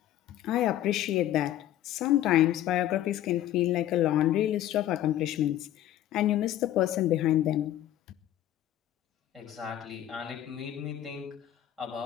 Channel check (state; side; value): quieter; right; 12.7 dB